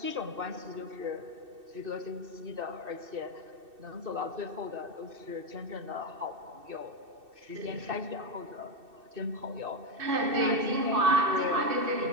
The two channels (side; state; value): left; late; 2.6 ms